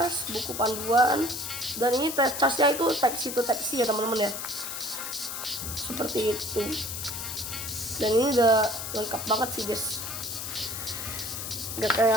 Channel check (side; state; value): left; noise; hiss, 6 dB below the sound